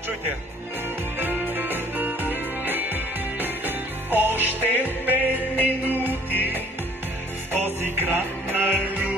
Чуйте я. Още 5 минути в този град на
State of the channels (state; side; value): normal; both; correlation 0.57